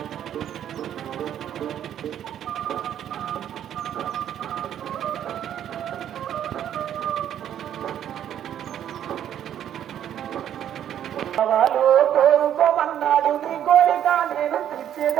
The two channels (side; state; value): left; quieter; 10.3 dB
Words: వాడు కోరుకోమన్నాడు నీ కోరిక నేను